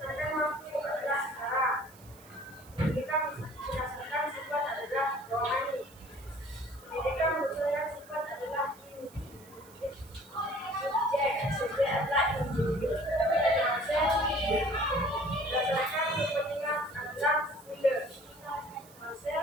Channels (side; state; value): right; noise; hiss, 23 dB below the sound